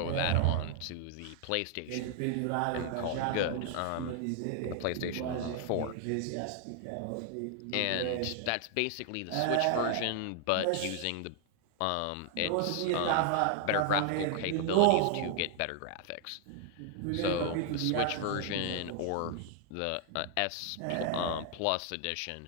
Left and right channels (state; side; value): different; both; correlation 0.00